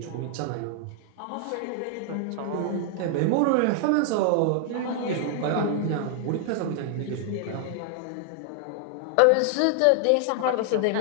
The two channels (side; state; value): both; different; correlation 0.00